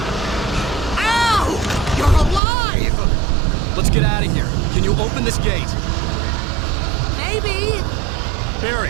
Let's get out of here. Can you open this gate? Maybe.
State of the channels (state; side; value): drops out; left; at 2.4 s